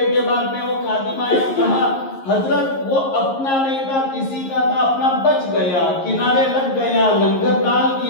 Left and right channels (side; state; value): right; late; 11 ms